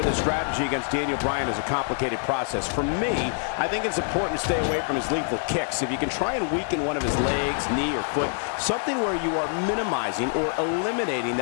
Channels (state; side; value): silent; right; 61 dB below the other